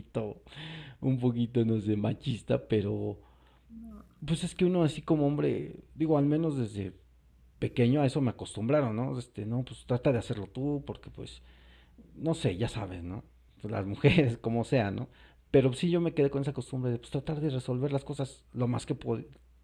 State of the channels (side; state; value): both; identical; correlation 1.00